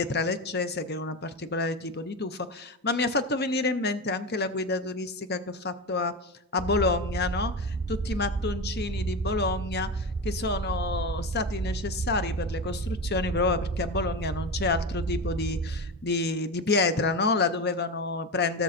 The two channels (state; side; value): normal; both; correlation 0.21